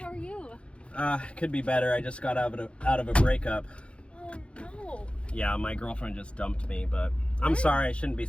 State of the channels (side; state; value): right; late; 0.059 ms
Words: are you? Could be better. I just got out of a breakup. Oh, no. Yeah, my girlfriend just dumped me, but I'm sorry. I shouldn't be